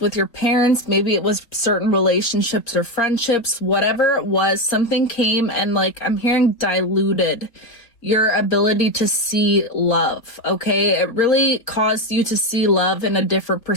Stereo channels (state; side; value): late; right; 3.7 ms